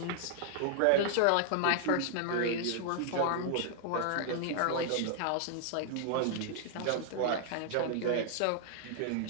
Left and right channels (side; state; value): both; different; correlation 0.00